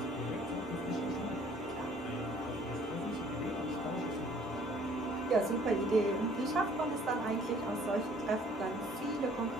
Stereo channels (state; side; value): normal; both; correlation 0.57